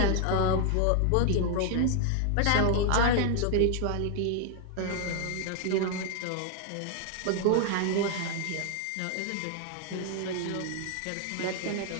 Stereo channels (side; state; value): both; different; correlation 0.00